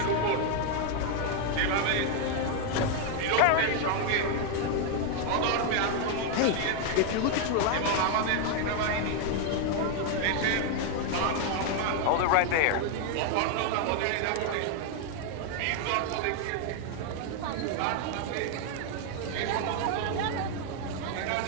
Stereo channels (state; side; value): different; both; correlation 0.00